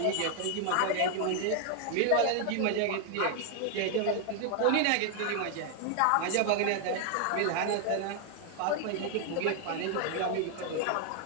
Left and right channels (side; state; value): both; different; correlation 0.00